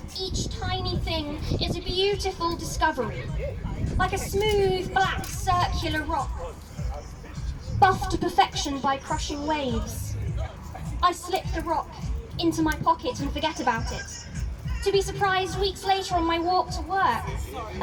Each tiny thing is a beautiful discovery, like a smooth, black, circular rock, buffed to perfection by crushing waves. I slip the rock into my pocket and forget about it, to be surprised weeks later on my walk to work,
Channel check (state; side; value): identical; both; correlation 1.00